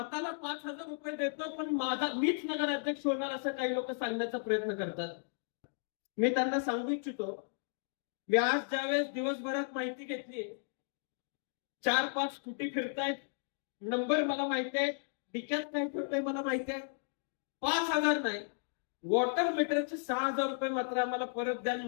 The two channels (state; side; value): silent; right; digital silence